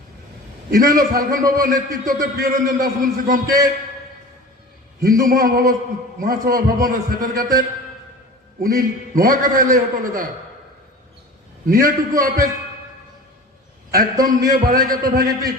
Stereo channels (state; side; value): normal; both; correlation 0.38